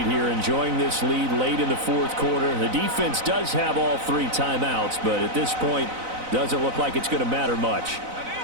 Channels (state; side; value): late; left; 4.0 ms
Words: here, enjoying this lead late in the 4th quarter. The defense does have all 3 timeouts, but at this point, doesn't look like it's going to matter much.